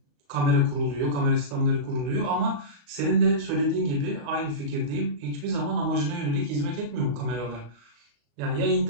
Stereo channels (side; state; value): left; late; 34 ms